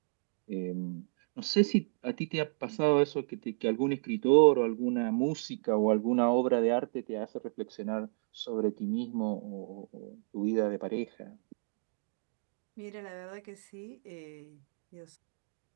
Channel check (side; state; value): left; silent; digital silence